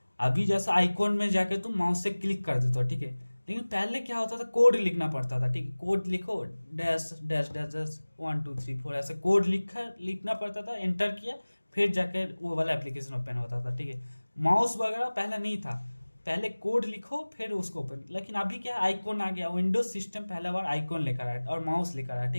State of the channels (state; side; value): inverted; both; correlation -1.00